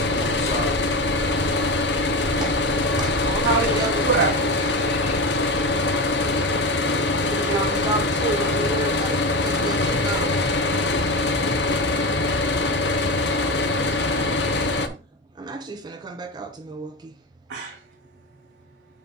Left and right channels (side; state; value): both; normal; correlation 0.21